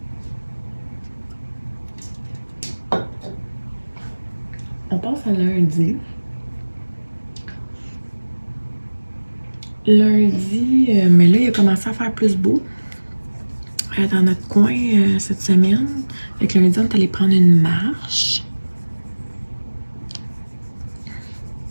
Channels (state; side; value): inverted; both; correlation -1.00